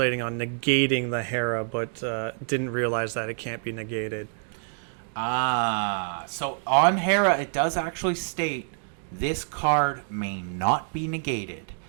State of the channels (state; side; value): silent; left; digital silence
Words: on negating the Hera, but didn't realize that it can't be negated. So on Hera, it does actually state this card may not be negated.